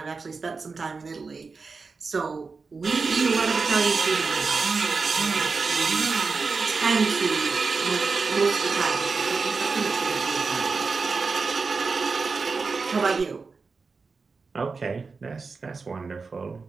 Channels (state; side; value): quieter; left; 4.5 dB